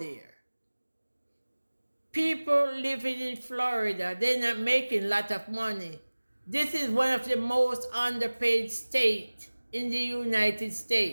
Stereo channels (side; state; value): both; inverted; correlation -1.00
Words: People living in Florida, they're not making a lot of money. This is one of the most underpaid states in the United